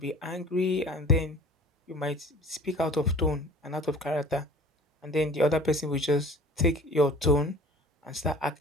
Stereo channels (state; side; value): normal; both; correlation 0.46